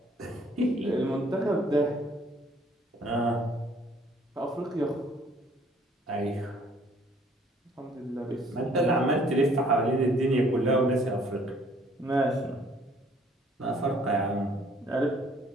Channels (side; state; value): both; normal; correlation 0.60